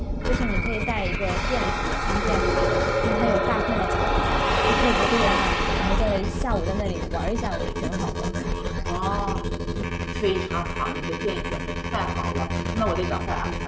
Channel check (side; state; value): both; identical; correlation 1.00